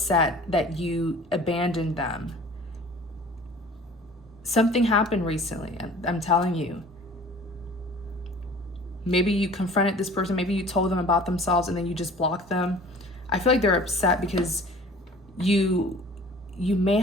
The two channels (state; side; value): normal; both; correlation 0.46